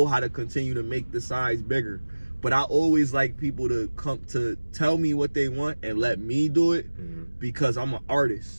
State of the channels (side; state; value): both; inverted; correlation -1.00